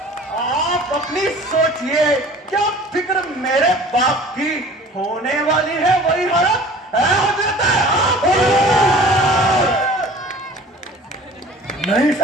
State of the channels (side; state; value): both; normal; correlation 0.46